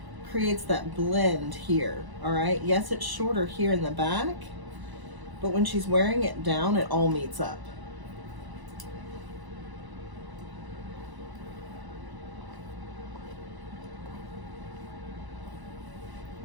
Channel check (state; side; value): late; left; 1.0 ms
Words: creates that blend here, all right? Yes, it's shorter here in the back, but when she's wearing it down, it all meets up.